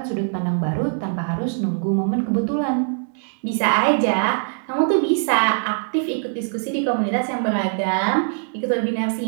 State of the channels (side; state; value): left; silent; digital silence